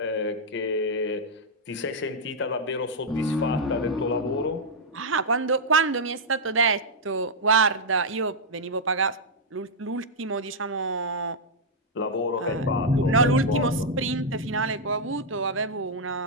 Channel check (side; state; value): both; normal; correlation -0.05